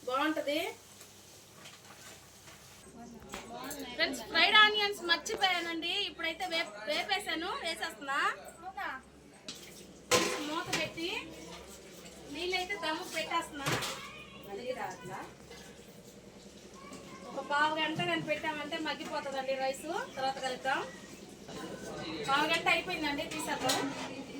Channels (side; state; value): both; identical; correlation 1.00